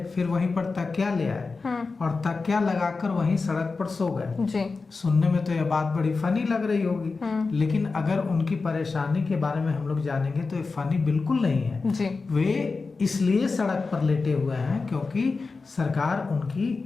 फिर वहीं पर तकिया ले आए और तकिया लगाकर वहीं सड़क पर सो गए। सुनने में तो यह बात बड़ी फनी लग रही होगी, लेकिन अगर उनकी परेशानी के बारे में हम लोग जानेंगे तो ये फनी बिल्कुल नहीं है। वे इसलिए सड़क पर लेटे हुए हैं क्योंकि सरकार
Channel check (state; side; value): quieter; right; 4.2 dB